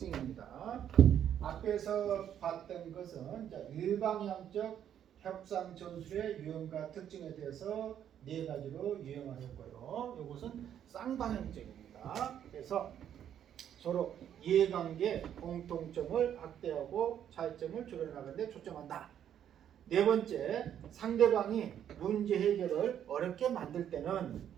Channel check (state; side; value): quieter; left; 9.8 dB